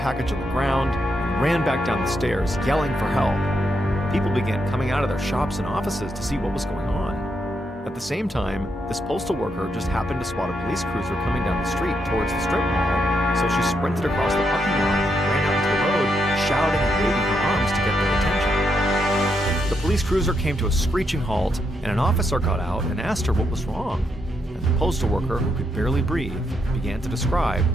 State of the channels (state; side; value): normal; both; correlation 0.80